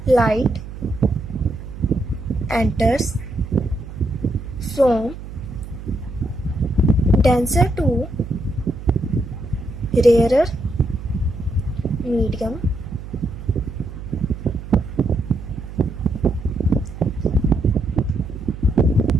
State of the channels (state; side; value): noise; right; hum, 11 dB below the sound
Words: light enters from denser to rarer medium